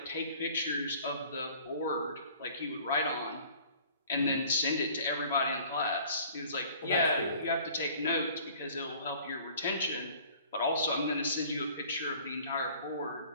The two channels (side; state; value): both; inverted; correlation -0.51